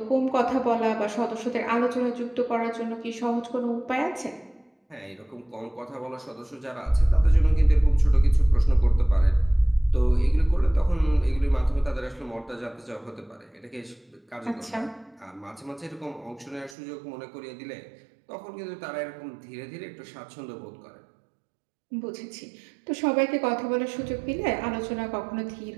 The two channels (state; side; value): drops out; left; at 16.8 s